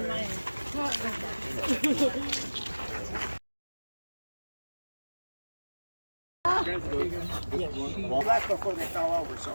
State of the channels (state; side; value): inverted; both; correlation -1.00